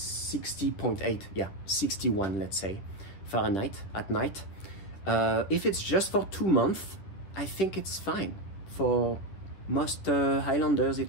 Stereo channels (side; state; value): right; late; 10 ms